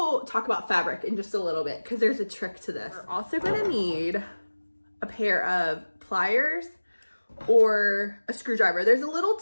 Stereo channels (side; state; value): both; inverted; correlation -1.00